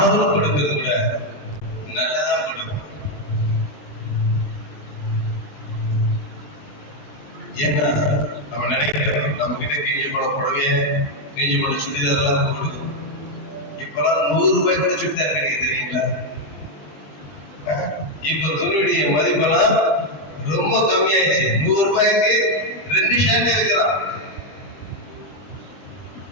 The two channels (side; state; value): right; late; 20 ms